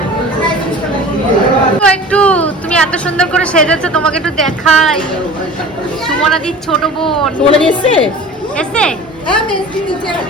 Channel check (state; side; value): normal; both; correlation 0.40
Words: একটু তুমি এত সুন্দর করে সেজেছো, তোমাকে একটু দেখাই। সুমনাদির ছোট বোন বলে দিয়েছে এসছে, হ্যাঁ মেজদি নিচে